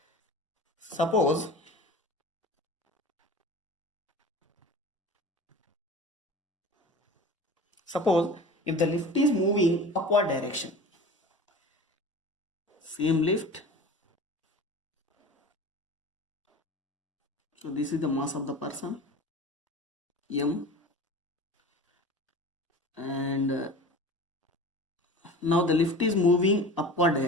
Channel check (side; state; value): both; normal; correlation 0.37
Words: Suppose if the lift is moving upward direction, same lift. So this is the mass of the person m, and now the lift is moving upward